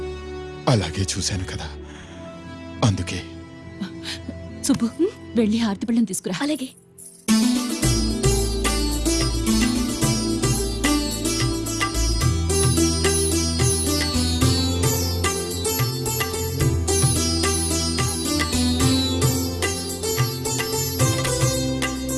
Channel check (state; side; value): identical; both; correlation 1.00